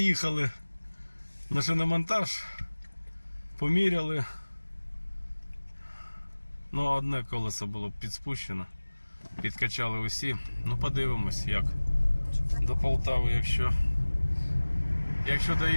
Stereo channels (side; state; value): both; inverted; correlation -1.00